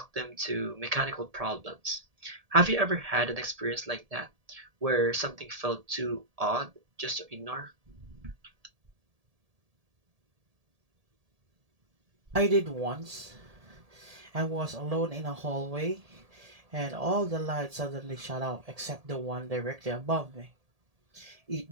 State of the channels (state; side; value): late; left; 1.7 ms